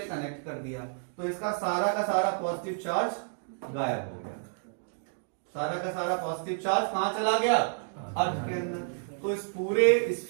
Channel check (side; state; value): left; silent; digital silence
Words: कनेक्ट कर दिया, तो इसका सारा का सारा पॉजिटिव चार्ज गायब हो गया। सारा का सारा पॉजिटिव चार्ज कहां चला गया, अर्थ के अंदर। तो इस पूरे